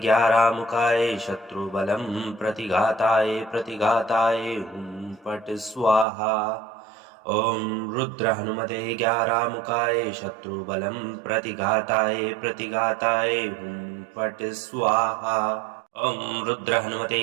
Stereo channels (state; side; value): drops out; left; at 6.1 s